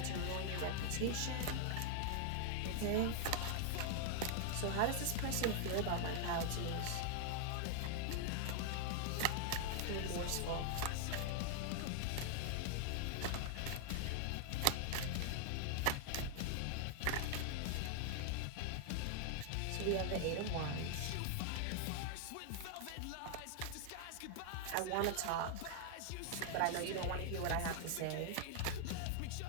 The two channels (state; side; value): different; both; correlation -0.01